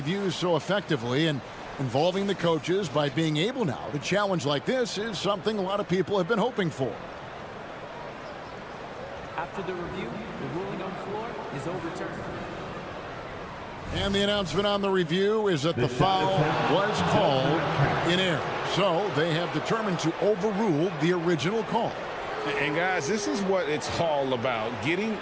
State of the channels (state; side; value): identical; both; correlation 1.00